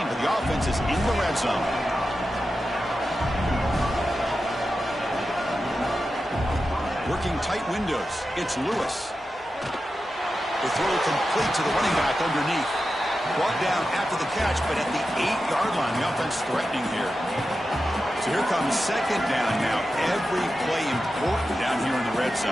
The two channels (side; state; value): both; normal; correlation 0.91